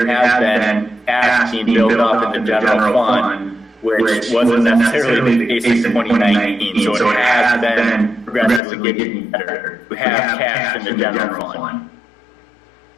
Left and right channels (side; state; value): right; drops out; at 8.6 s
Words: has been cash being built up in the general fund, which wasn't necessarily the case in 2019. So it has been progressively getting better. We have cash in the general fund.